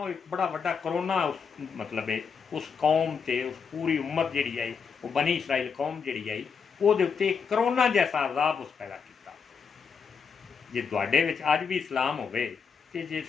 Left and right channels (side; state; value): right; quieter; 6.0 dB